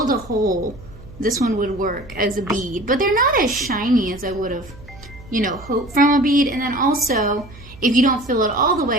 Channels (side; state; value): right; noise; hum, 20 dB below the sound